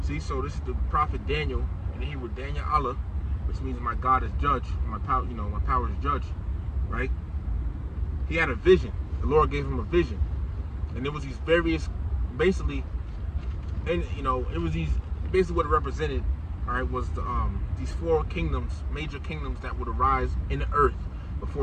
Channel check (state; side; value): identical; both; correlation 1.00